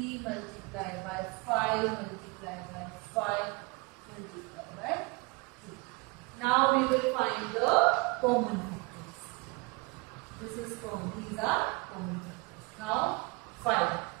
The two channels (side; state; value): left; quieter; 28.0 dB